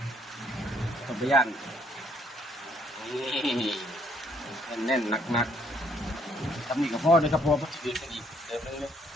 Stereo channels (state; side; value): normal; both; correlation 0.66